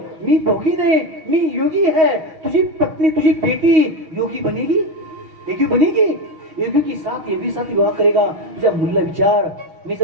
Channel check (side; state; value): left; late; 6.3 ms